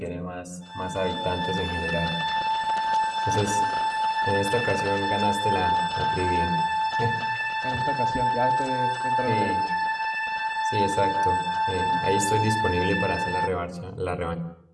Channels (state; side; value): identical; both; correlation 1.00